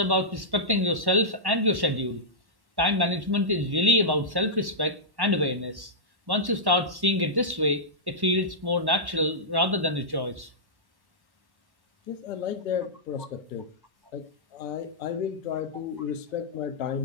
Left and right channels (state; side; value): late; left; 1.1 ms